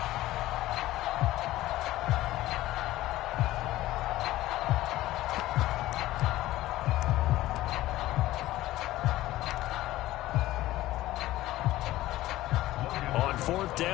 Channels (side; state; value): right; quieter; 16.1 dB